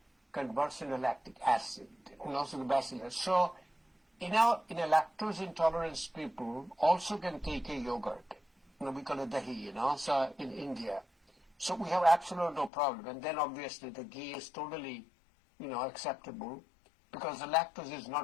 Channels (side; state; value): right; drops out; at 12.7 s